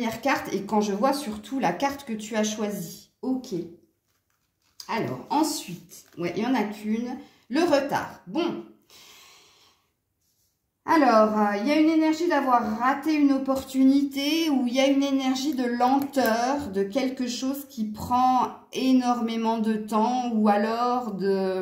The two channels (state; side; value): identical; both; correlation 1.00